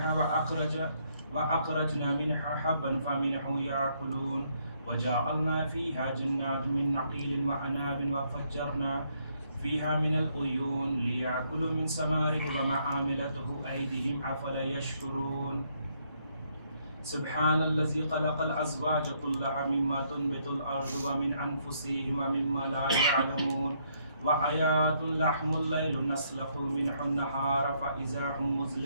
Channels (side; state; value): both; inverted; correlation -0.72